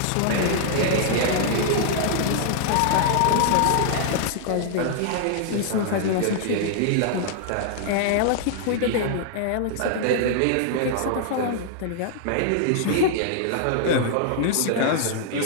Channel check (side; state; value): both; different; correlation -0.01